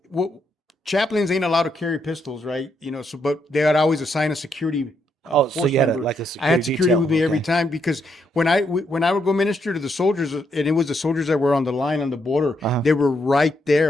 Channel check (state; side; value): normal; both; correlation 0.77